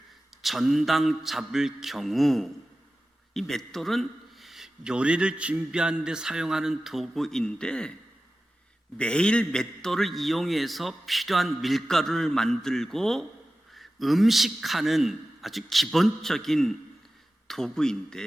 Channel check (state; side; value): normal; both; correlation 0.95